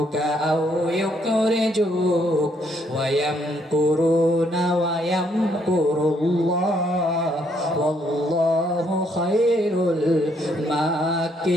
আও ইউখরিজুক ওয়া ইয়ামকুরুনা ওয়া ইয়ামকুরুল্লাহ ওয়াল্লাহু খায়রুল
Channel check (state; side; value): normal; both; correlation 0.71